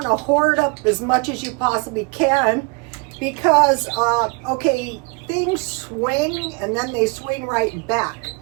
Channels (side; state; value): left; quieter; 30.3 dB